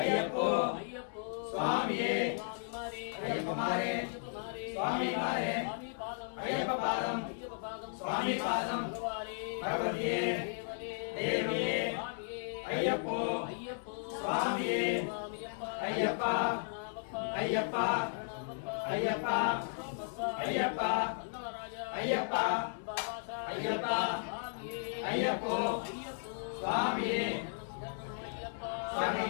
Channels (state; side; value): silent; right; digital silence